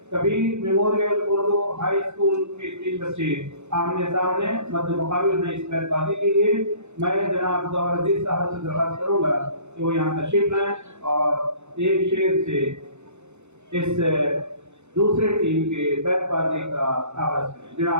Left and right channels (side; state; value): left; late; 0.83 ms